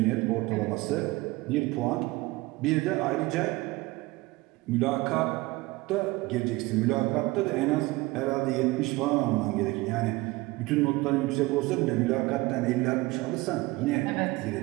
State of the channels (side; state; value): left; quieter; 21.4 dB